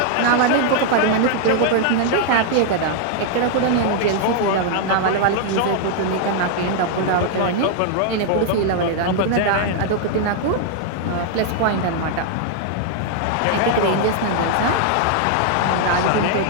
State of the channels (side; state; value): both; different; correlation 0.00